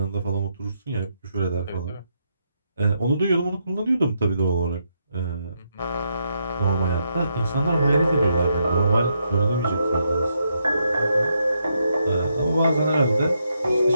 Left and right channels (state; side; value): inverted; both; correlation -0.79